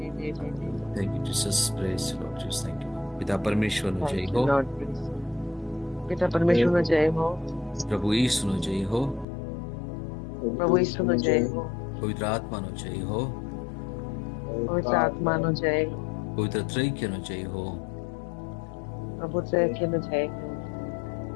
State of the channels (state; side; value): drops out; right; at 9.2 s